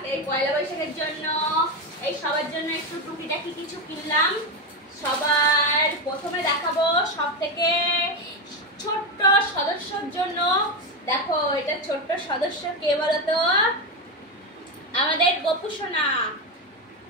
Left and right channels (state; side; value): normal; both; correlation 0.12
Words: এই পয়লা বৈশাখের জন্য সবার জন্য একটু টুকিটাকি কিছু কিনলাম। সবার প্রথমে দেখাবো সব থেকে ছোট্ট সদস্যর জন্য। দেখো, এটা ছোট্ট সদস্য কে বলতো? আমাদের গপু সোনা।